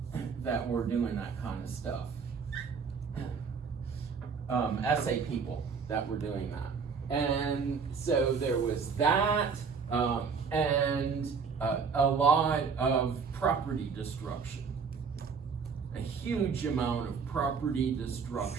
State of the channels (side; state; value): left; quieter; 5.7 dB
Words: that were doing that kind of stuff. SA people that were doing that. And so there was that, and a lot of property destruction. A huge amount of property